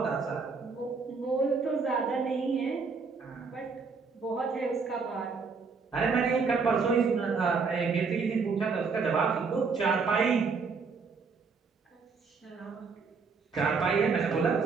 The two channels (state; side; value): quieter; left; 4.9 dB